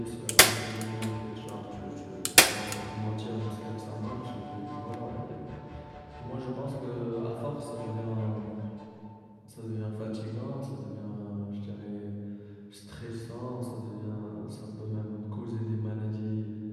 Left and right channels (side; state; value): both; identical; correlation 1.00